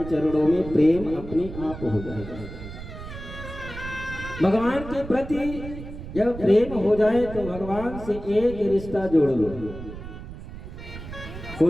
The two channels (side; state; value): right; noise; rumble, 11 dB below the sound